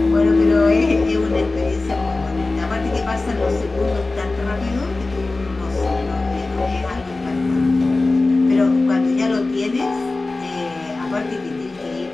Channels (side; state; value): right; quieter; 3.3 dB